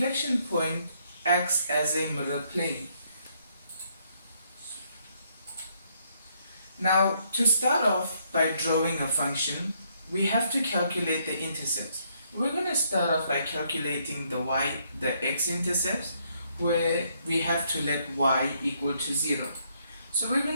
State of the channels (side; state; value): both; inverted; correlation -0.72